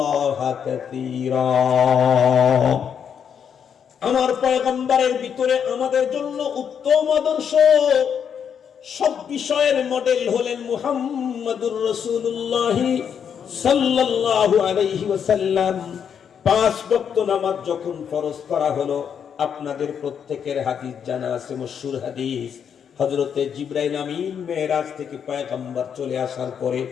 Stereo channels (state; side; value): quieter; right; 7.7 dB